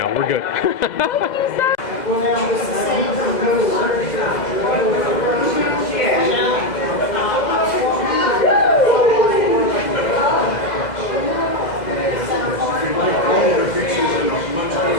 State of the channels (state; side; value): late; right; 2.0 ms